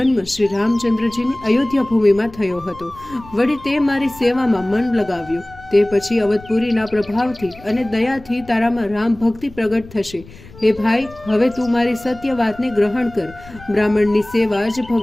શ્રી રામચંદ્રજીની અયોધ્યા ભૂમિમાં થયો હતો. વળી તે મારી સેવામાં મન લગાવ્યું. તે પછી અવધપુરીના પ્રભાવથી અને દયાથી તારામાં રામ ભક્તિ પ્રગટ થશે. હે ભાઈ, હવે તું મારી સત્ય વાતને ગ્રહણ કર. બ્રાહ્મણની સેવા જ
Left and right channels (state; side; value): noise; left; rumble, 20 dB below the sound